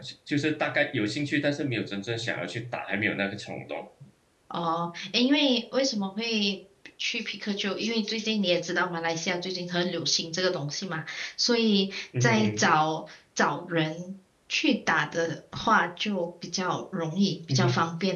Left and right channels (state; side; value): identical; both; correlation 1.00